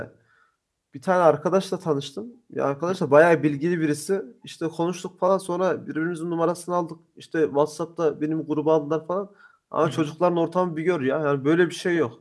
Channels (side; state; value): both; identical; correlation 1.00